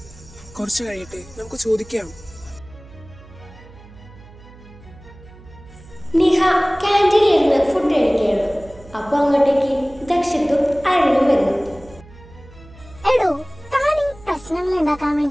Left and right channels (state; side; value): noise; right; hum, 21 dB below the sound